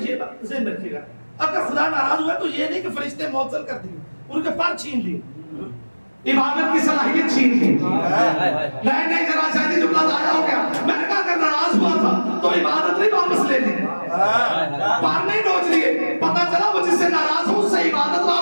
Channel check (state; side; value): inverted; both; correlation -1.00